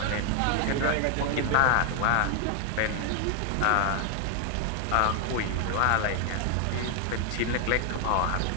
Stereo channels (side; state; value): both; different; correlation 0.00